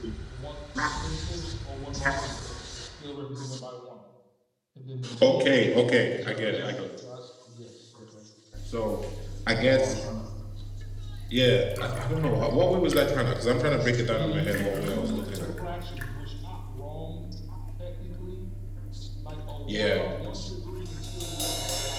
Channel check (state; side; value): identical; both; correlation 1.00